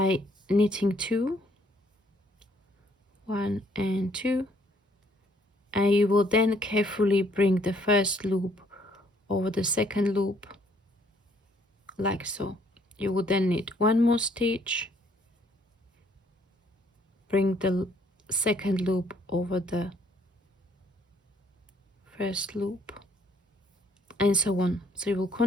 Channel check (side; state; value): both; normal; correlation 0.65